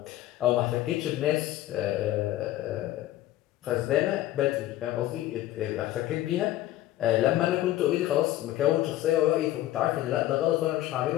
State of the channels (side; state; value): right; quieter; 14.6 dB